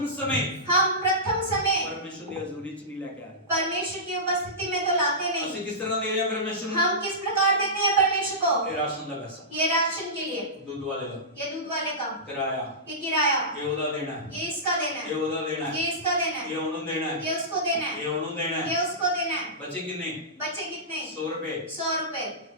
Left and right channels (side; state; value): both; normal; correlation -0.16